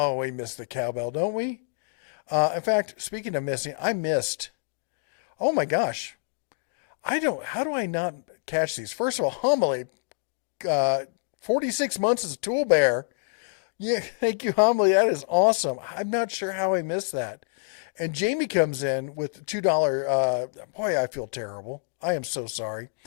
we miss the cowbell, don't we? In fact, speaking of missing, I missed. Oh my gosh. How do I not catch these? First of all, Homily, 46 months as a tool bear. Yeah, thank you, Homily. That is awesome. I'm not sure how I missed that. And Jamie comes in with $2. Boy, I feel terrible. I am so sorry.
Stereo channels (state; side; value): silent; right; digital silence